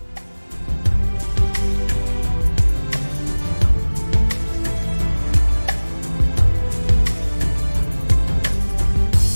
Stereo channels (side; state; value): both; inverted; correlation -1.00